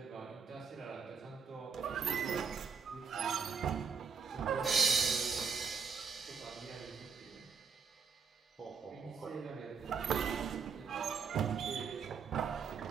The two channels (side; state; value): left; quieter; 5.8 dB